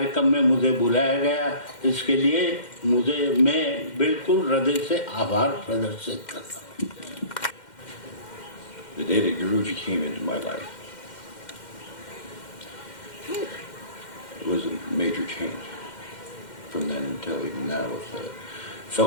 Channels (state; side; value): late; right; 2.1 ms